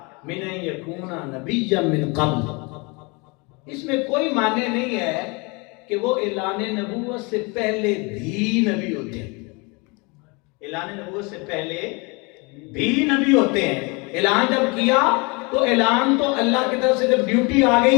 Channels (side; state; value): right; quieter; 28.8 dB